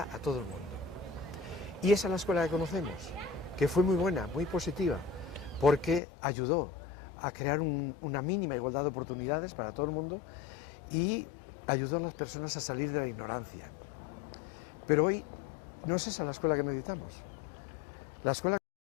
a todo el mundo. Y esa es la escuela que conocemos, que fue muy buena, muy positiva, porque ayudó a crear una mínima igualdad de oportunidades para todo el mundo y ayudó a las personas a salir de la ignorancia. Pero hoy no es esa la escuela que necesitamos. La escuela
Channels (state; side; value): drops out; right; at 6.0 s